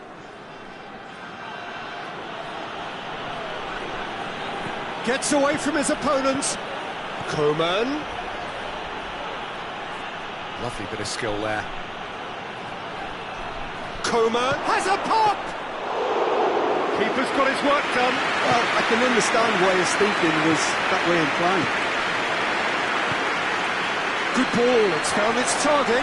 Gets away from his opponents. Coman. Lovely bit of skill there. Coman has a pop! Keeper's got his work done. Well, I can understand why his thinking was that way inclined. Good ball, it's found its target.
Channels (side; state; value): both; identical; correlation 1.00